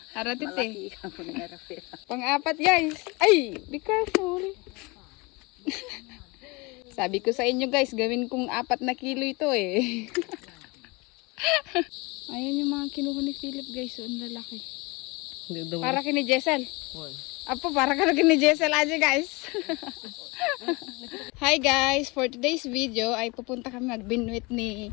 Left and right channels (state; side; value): quieter; right; 26.1 dB